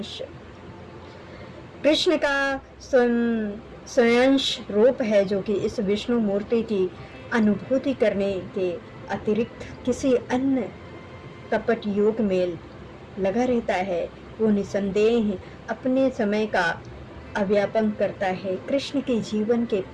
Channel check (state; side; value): identical; both; correlation 1.00